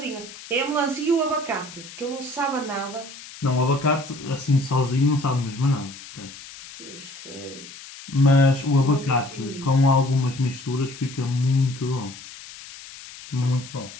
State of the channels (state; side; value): noise; left; hiss, 16 dB below the sound